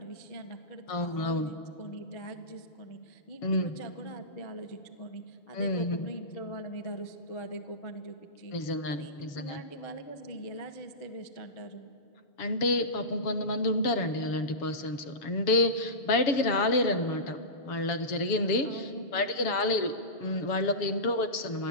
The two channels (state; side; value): late; right; 7.1 ms